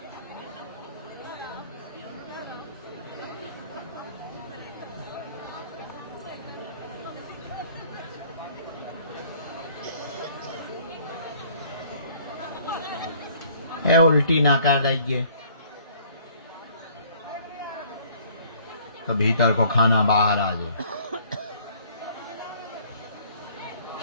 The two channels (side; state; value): both; inverted; correlation -0.57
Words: उल्टी ना कर रही, तो भीतर को खाना बाहर आ जाए।